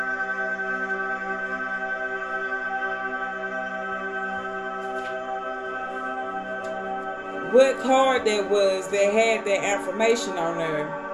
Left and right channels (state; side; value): identical; both; correlation 1.00